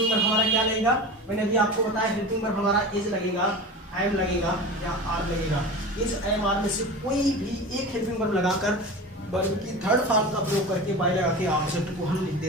वर्ब हमारा क्या लगेगा, मैंने अभी आपको बताया हेल्पिंग वर्ब हमारा इज लगेगा, एम लगेगा या आर लगेगा। इज एम आर में से कोई भी एक हेल्पिंग वर्ब लगाकर वर्ब की थर्ड फॉर्म का प्रयोग करके बाई लगा के ऑब्जेक्ट को हम लिख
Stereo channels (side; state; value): both; normal; correlation 0.31